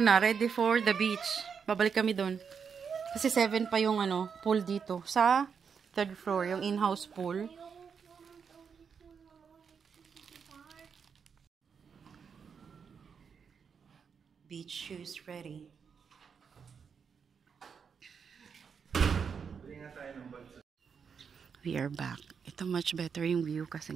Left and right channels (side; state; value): left; quieter; 6.4 dB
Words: ready for the beach. Babalik kami doon. Kasi 7 pa yung pool dito. Sa 3rd floor, yung in-house pool. Beach shoes ready. We are back. Ito much better yung view